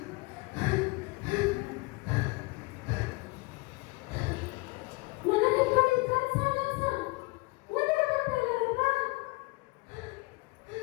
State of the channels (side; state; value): right; quieter; 25.6 dB